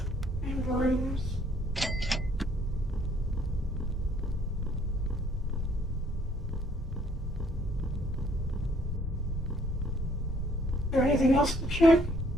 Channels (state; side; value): normal; both; correlation 0.63